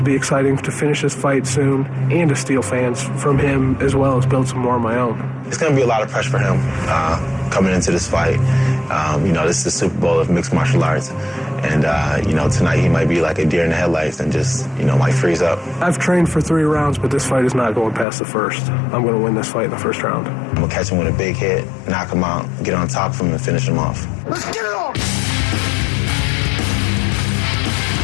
be exciting, to finish this fight soon, and to steal fans from him as well as build some more of my own. It's going to be a lot of pressure for him coming into this fight. This is the Super Bowl of mixed martial arts. And, tonight he might be like a deer in the headlights and just, might freeze up. I've trained for 3 rounds, but this fight is not going past the first. I'm going to win this fight in the first round. I'm going to catch him with a big hit, knock him out, get on top of him, and finish him off. Let's get it on!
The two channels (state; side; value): drops out; right; at 18.1 s